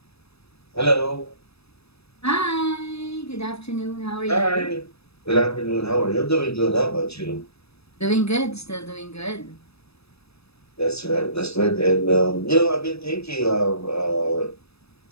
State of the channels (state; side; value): late; right; 0.78 ms